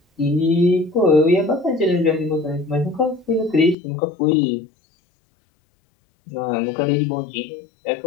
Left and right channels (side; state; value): right; drops out; at 3.8 s